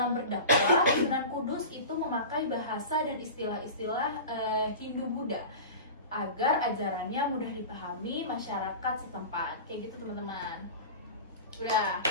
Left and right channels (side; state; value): both; inverted; correlation -0.32